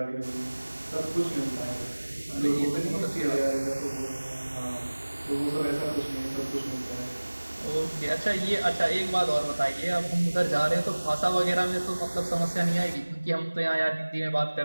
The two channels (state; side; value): inverted; both; correlation -1.00